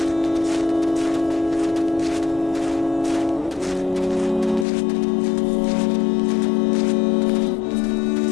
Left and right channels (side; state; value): right; drops out; at 4.7 s